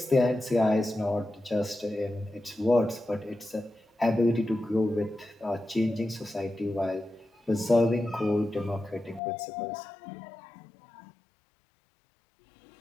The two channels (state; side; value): drops out; right; at 9.2 s